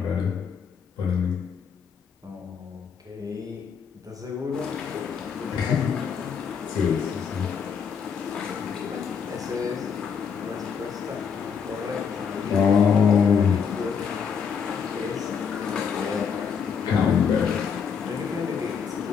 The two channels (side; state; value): right; quieter; 6.6 dB